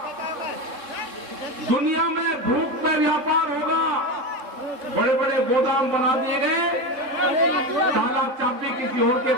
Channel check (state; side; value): late; left; 3.7 ms